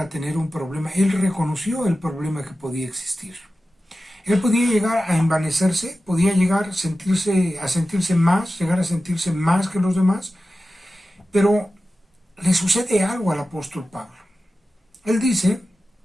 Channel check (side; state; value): both; normal; correlation 0.94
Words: tener un problema. Él reconoció el problema que podía existir. Él podía llegar a envanecerse, podía llegar a sentirse más, llegar a sentirse más que los demás, Pero le sucede algo al apóstol Pablo. Él dice